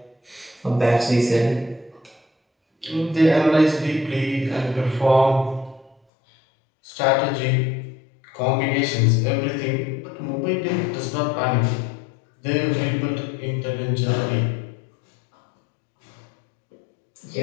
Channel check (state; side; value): drops out; right; at 6.0 s